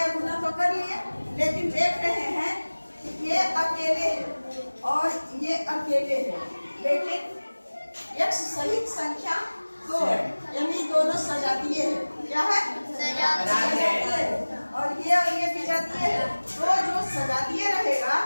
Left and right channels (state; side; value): inverted; both; correlation -1.00